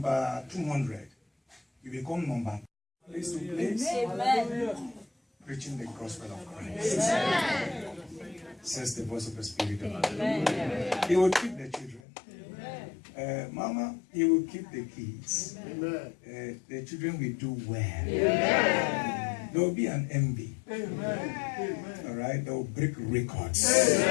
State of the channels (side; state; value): right; drops out; at 12.0 s